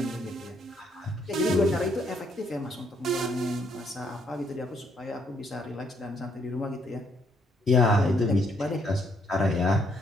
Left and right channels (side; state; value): both; normal; correlation 0.70